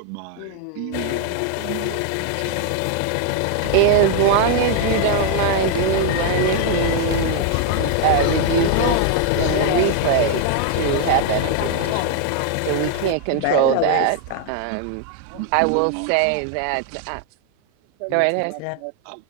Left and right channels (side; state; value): both; different; correlation 0.00